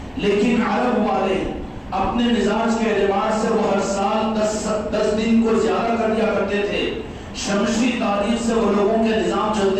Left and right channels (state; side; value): identical; both; correlation 1.00